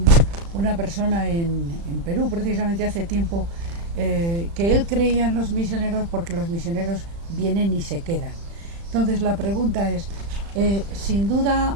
una persona en Perú, precisamente hace tiempo, que él creía en los misioneros porque los misioneros vienen y se quedan. Entonces la pregunta es, sin duda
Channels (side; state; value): left; late; 35 ms